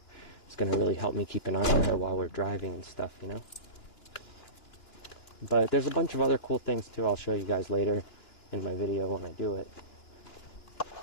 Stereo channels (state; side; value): late; right; 2.9 ms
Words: is going to really help me keep an eye on her while we're driving and stuff, you know. But there's a bunch of other cool things too. I'll show you guys later in my video when I do it.